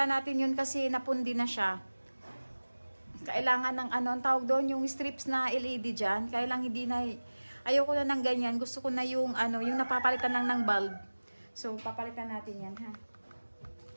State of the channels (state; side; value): inverted; both; correlation -1.00